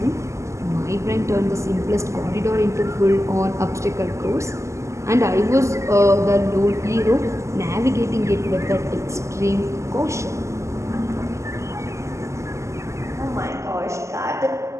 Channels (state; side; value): late; left; 0.14 ms